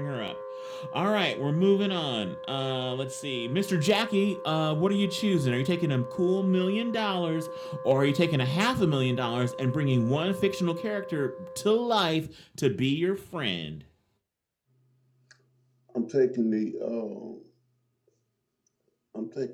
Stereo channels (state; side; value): identical; both; correlation 1.00